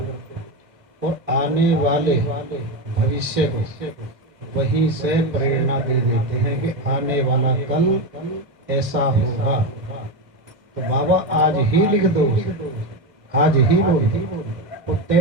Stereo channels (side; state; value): left; late; 2.2 ms